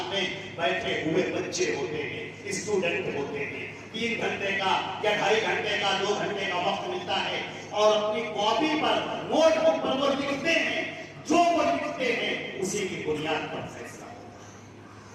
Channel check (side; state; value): both; identical; correlation 1.00